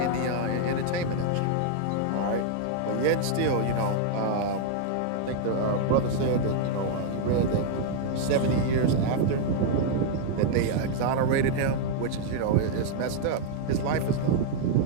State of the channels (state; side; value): different; both; correlation -0.01